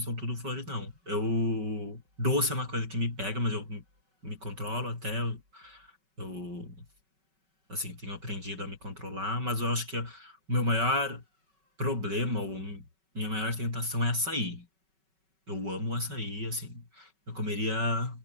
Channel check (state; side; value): late; left; 5.3 ms